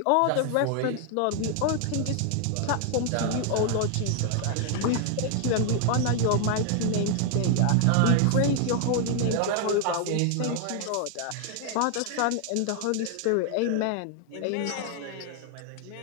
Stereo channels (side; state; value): both; different; correlation 0.00